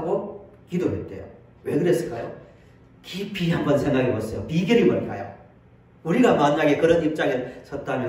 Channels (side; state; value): both; identical; correlation 1.00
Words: 기도했대요. 왜 그랬을까요? 깊이 한번 생각해 보세요. 비결이 뭘까요? 우리가 만약에 그런 입장에